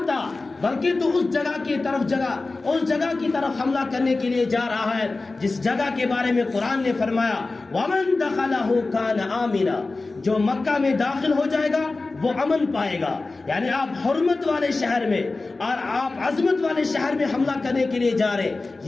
آ، بلکہ تو اس جگہ کی طرف حملہ کرنے کے لیے جا رہا ہے جس جگہ کے بارے میں قرآن نے فرمایا وَمَن دَخَلَهُ كَانَ آمِنًا، جو مکہ میں داخل ہو جائے گا وہ امن پائے گا. یعنی آپ حرمت والے شہر میں اور آپ عظمت والے شہر میں حملہ کرنے کے لیے جا رہے،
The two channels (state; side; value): quieter; right; 3.5 dB